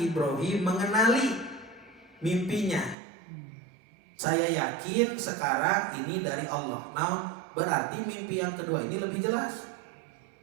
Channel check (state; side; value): drops out; left; at 3.0 s